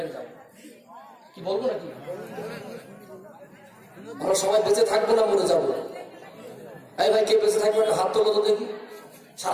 যাবো কি বলবো নাকি? আমরা সবাই বেঁচে থাকবো না মরে যাবো? এই ভাই কে বেঁচে থাকবে একটা হাত তোলো তো দেখি।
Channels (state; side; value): identical; both; correlation 1.00